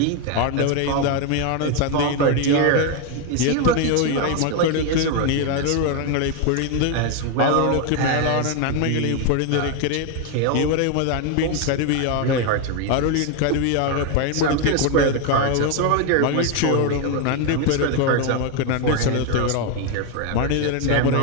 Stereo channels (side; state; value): both; different; correlation 0.01